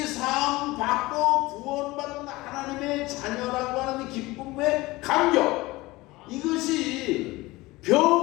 받고 구원받은 하나님의 자녀라고 하는 기쁨의 감격, 이것이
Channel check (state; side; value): quieter; right; 20.4 dB